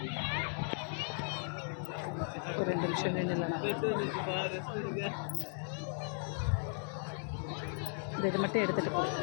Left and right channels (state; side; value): silent; right; 53 dB below the other